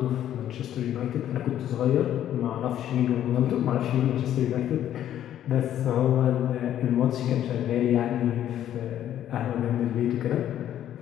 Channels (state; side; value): quieter; right; 11.2 dB